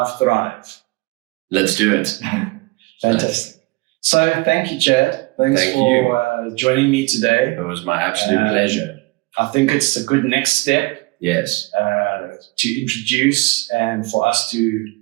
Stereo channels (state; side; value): quieter; left; 24.8 dB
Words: Thrive. Let's do it. Fantastic. So thank you, Chad. Thanks for joining me today. It was my absolute pleasure. I think it's a good next step. Yes. To introduce and for us to